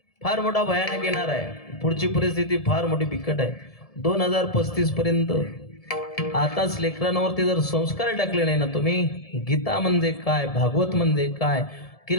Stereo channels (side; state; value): right; late; 1.7 ms